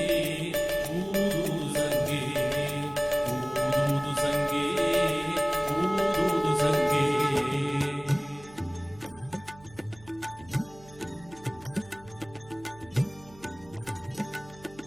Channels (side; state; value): right; noise; hum, 23 dB below the sound